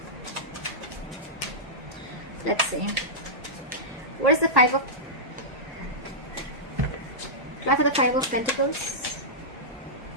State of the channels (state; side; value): normal; both; correlation -0.13